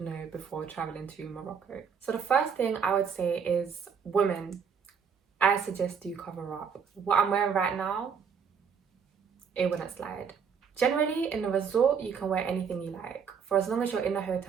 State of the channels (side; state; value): left; quieter; 6.6 dB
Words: know before traveling to Morocco. So the first thing I would say is women. I suggest you cover up. What I'm wearing right now, it wouldn't slide. Generally, in the resort, you can wear anything you like. For as long as you're in the